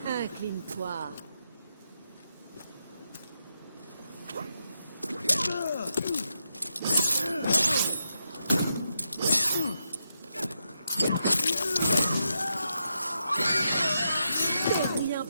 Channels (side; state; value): both; inverted; correlation -0.83